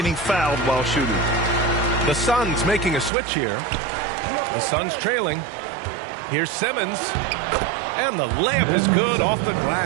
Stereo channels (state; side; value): drops out; left; at 3.1 s